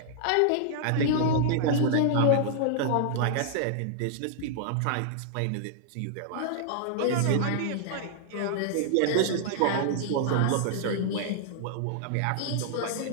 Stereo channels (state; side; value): different; both; correlation -0.01